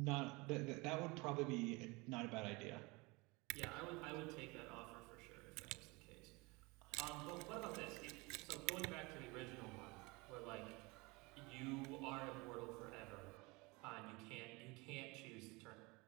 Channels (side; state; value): left; quieter; 25.6 dB